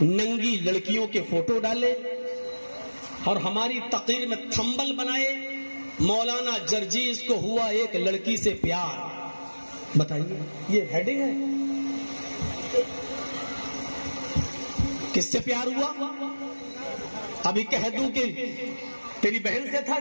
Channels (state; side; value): inverted; both; correlation -1.00